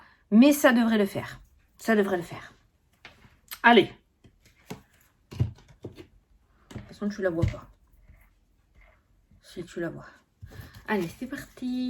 mais ça devrait le faire. Ça devrait le faire. Allez. De toute façon, tu la vois pas. Si tu la vois. Allez, c'est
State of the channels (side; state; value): both; identical; correlation 1.00